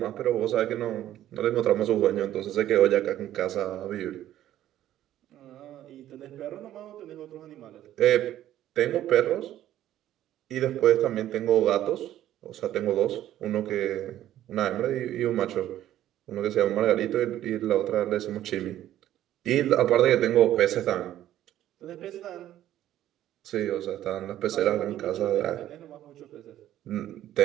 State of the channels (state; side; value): quieter; left; 12.7 dB